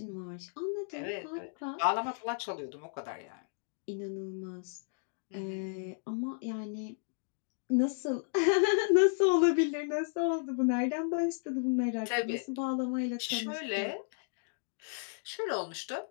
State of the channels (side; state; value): right; silent; digital silence